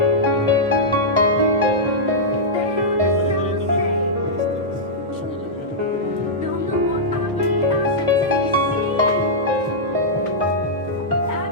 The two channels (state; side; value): normal; both; correlation -0.10